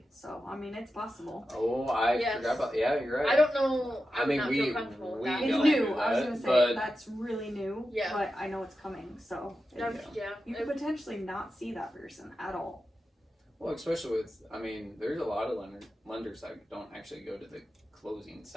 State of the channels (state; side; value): normal; both; correlation 0.91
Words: So I mean, it's possible. Oh, I Yes. forgot about. Yeah, you're right. I don't know. I I mean, not we- feel comfortable with we that. It's don't new. do I was that, gonna say but- that's really new. Yeah. But I know it's coming, so you could potentially not see that person at all. Well, especially with, I mean, there's a lot of lenders that don't actually go to the closing